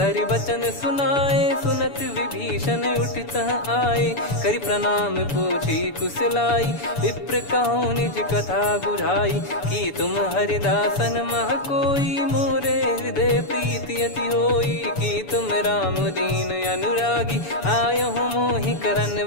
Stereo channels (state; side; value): late; right; 7.0 ms